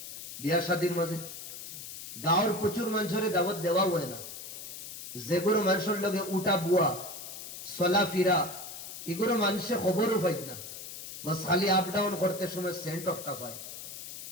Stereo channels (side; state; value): left; noise; hiss, 10 dB below the sound